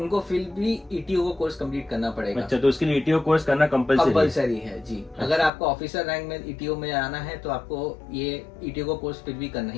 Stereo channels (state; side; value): drops out; right; at 5.5 s